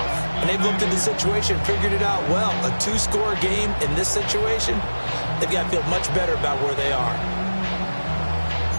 And they've looked at the situation, figured it out well. A 2-score game in this situation, they've got to feel much better about where they are.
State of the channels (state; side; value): inverted; both; correlation -1.00